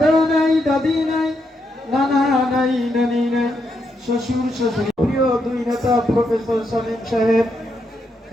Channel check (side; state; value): both; normal; correlation 0.81